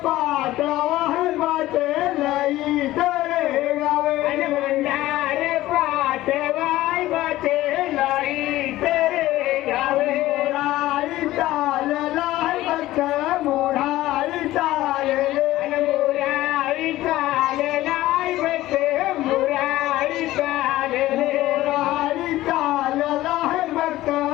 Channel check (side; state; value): right; quieter; 16.1 dB